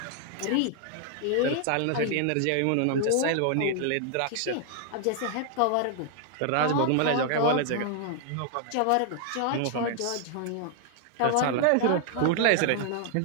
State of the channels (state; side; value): different; both; correlation 0.00